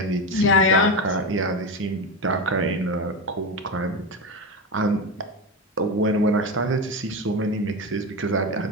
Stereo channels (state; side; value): normal; both; correlation 0.18